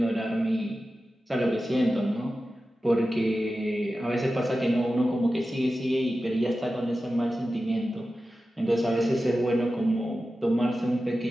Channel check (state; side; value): normal; both; correlation 0.93